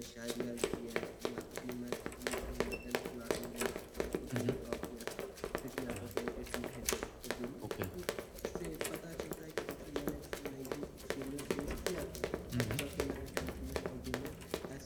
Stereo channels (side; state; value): both; identical; correlation 1.00